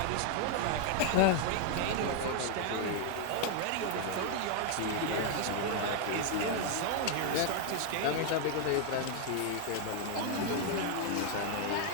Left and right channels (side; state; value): both; different; correlation 0.01